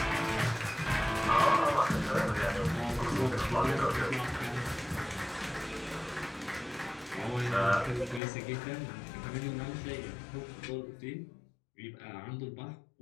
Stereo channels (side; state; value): right; drops out; at 8.2 s